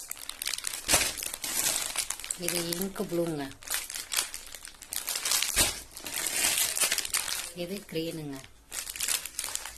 இது இங்கு ப்ளூங்க. இது க்ரீனுங்க.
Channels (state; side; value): identical; both; correlation 1.00